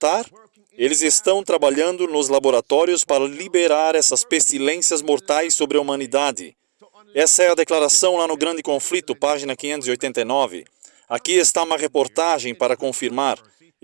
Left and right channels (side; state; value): left; silent; digital silence